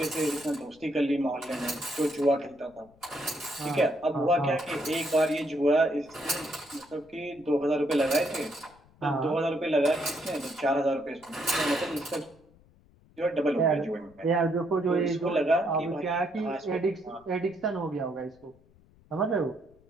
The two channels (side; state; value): left; noise; rumble, 29 dB below the sound